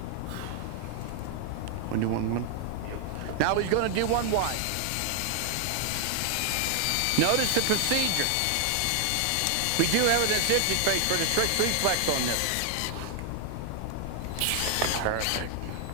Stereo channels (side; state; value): both; different; correlation 0.00